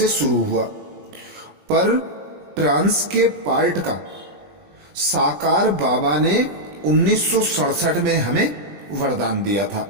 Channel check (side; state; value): left; late; 20 ms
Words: शुरू हुआ, पर ट्रांस के पार्ट का साकार बाबा ने 1967 में हमें वरदान दिया था।